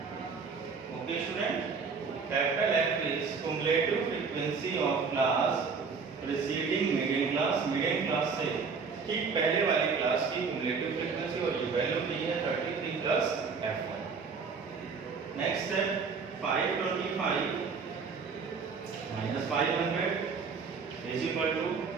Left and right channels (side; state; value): left; quieter; 5.2 dB